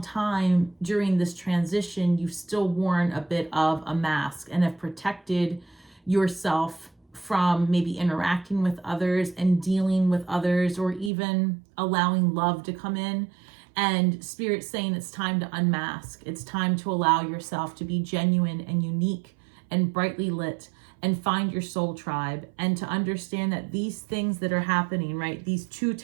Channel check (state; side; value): drops out; left; at 11.1 s